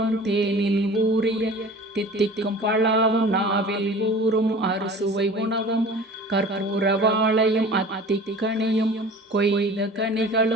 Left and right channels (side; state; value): both; normal; correlation 0.42